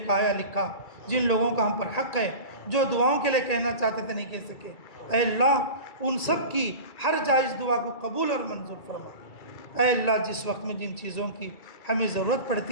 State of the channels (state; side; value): late; right; 2.3 ms